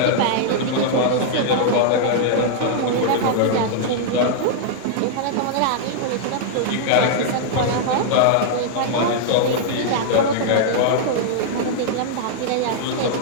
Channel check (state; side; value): different; both; correlation -0.01